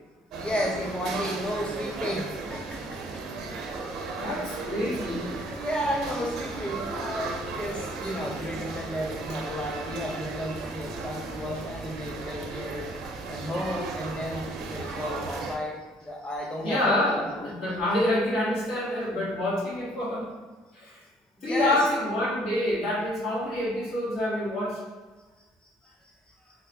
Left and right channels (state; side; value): normal; both; correlation 0.61